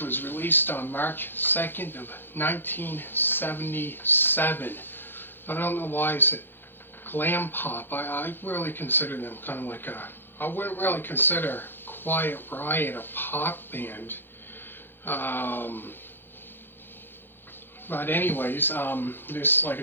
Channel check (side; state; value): right; late; 0.10 ms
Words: released on March 2nd of 1977. I don't know why it's glam pop. I really consider them kind of like I wouldn't really consider Quiet Riot a pop band. But anyways, this, like I